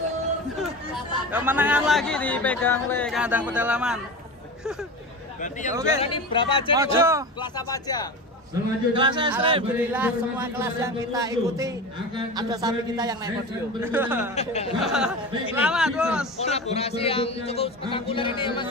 kemenangan lagi dipegang oleh kandang pedalaman. Berarti yang Oke. juara ini berapa aja? Mojo. Kelas apa aja? Selanjutnya Kelas ekstrim. Alhamdulillah semua kelas yang kita ikuti ada sapi kita yang naik podium. Selamat bos. Kolaborasi yang cukup spektakuler ini ya Mas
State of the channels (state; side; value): normal; both; correlation 0.28